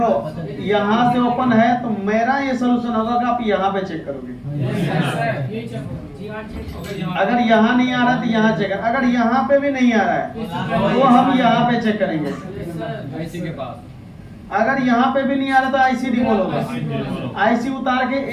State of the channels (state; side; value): identical; both; correlation 1.00